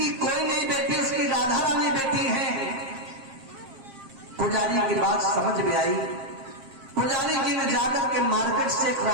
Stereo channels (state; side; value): late; left; 7.5 ms